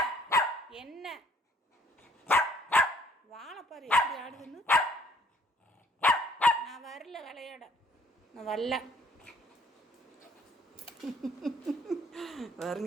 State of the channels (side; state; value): both; normal; correlation 0.62